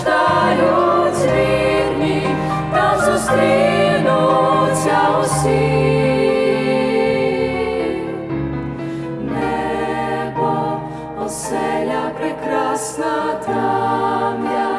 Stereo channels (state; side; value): identical; both; correlation 1.00